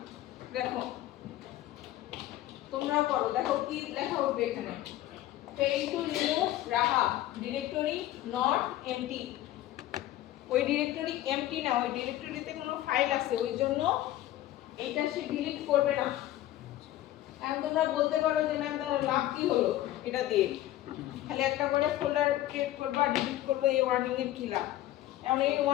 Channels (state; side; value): quieter; right; 14.4 dB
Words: দেখো তোমরা করো, দেখো কি লেখা উঠবে এখানে। fail to remove রাহা ডিরেক্টরি নট এমটি। ওই ডিরেক্টরি এমটি না, ওই ডিরেক্টরিতে কোনো ফাইল আছে, ওই জন্য এটা সে ডিলিট করবে না। এখন তোমরা বলতে পারো যে ম্যাম তার লাভ কি হলো এটা দিয়ে, খালি একটা করে ফোল্ডার ক্রিয়েট করবা ডিলিট করবো, এই ওয়ার্নিং এর কি লাভ? এখন এই